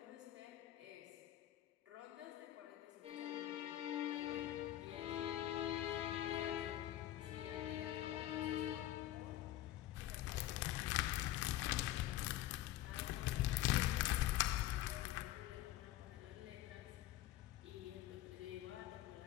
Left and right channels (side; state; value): right; quieter; 14.2 dB